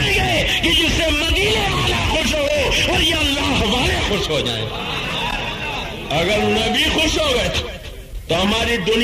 گے کہ جس سے مدینے والا خوش ہو اور یہ اللہ والے خوش ہو جائیں. اگر نبی خوش ہو گئے تو ہماری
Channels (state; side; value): identical; both; correlation 1.00